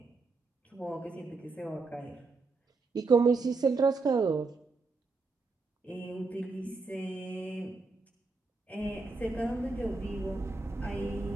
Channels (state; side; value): quieter; left; 3.9 dB